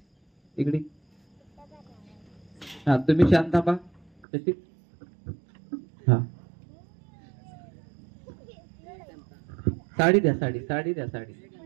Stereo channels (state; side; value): drops out; left; at 4.1 s